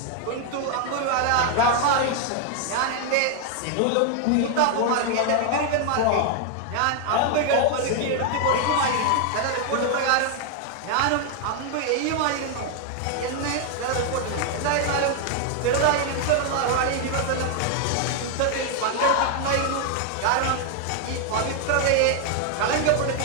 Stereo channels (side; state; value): both; different; correlation 0.00